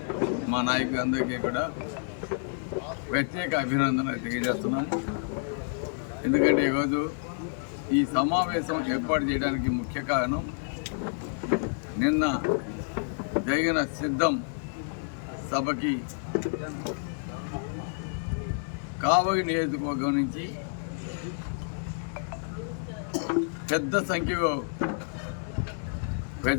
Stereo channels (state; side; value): silent; right; digital silence